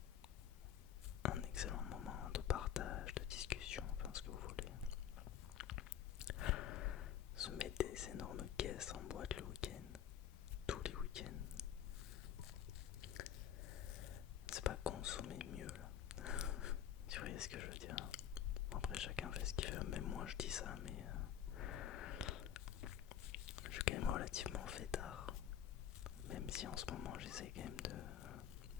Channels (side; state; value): right; quieter; 10.1 dB